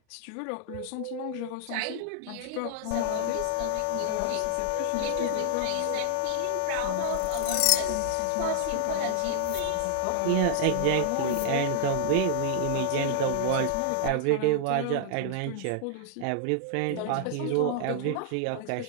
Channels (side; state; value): both; different; correlation -0.01